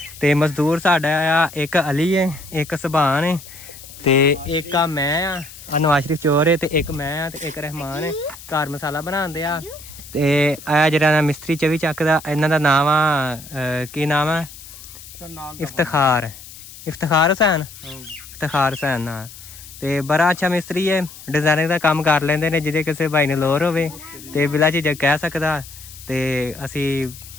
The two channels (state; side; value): noise; left; hiss, 17 dB below the sound